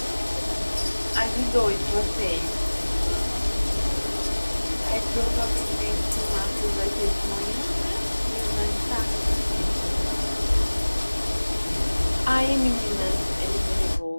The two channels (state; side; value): inverted; both; correlation -1.00